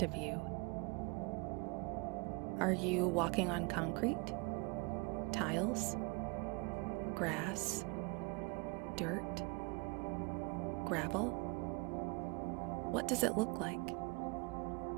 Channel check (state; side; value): quieter; left; 29.7 dB